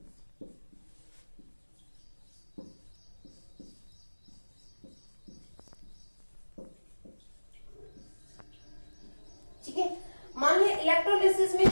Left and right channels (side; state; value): both; inverted; correlation -1.00